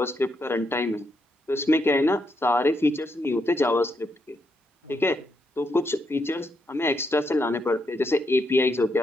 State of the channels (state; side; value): normal; both; correlation 0.79